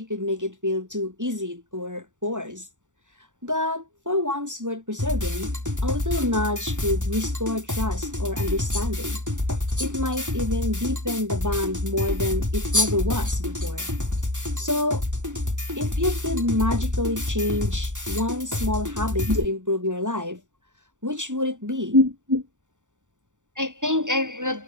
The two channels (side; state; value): left; late; 0.86 ms